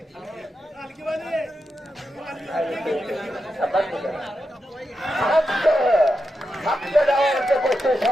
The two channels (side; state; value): both; normal; correlation 0.88